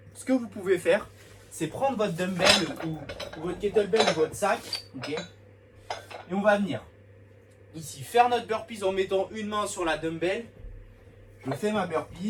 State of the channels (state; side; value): identical; both; correlation 1.00